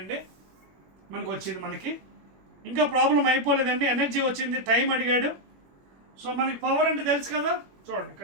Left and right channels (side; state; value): left; late; 21 ms